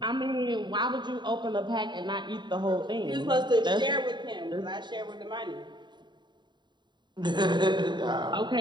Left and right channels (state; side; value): late; left; 0.22 ms